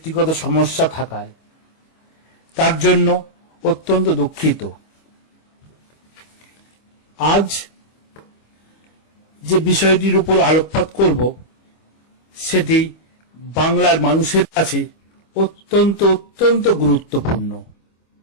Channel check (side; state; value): right; late; 25 ms